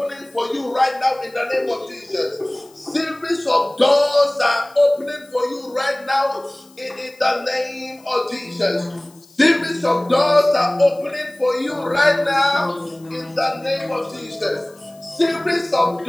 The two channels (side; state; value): left; noise; hiss, 28 dB below the sound